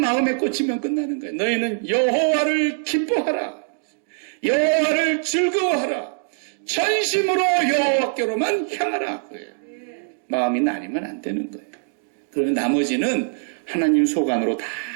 꽂히면 끝나는 거예요. 너희는 여호와를 기뻐하라. 여호와를 즐거워하라. 전심으로 여호와께로만 향하라. 그래요. 마음이 나뉘면 안 되는 거예요. 그러면 나머지는 하나님 속 안으로 다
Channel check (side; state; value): left; silent; digital silence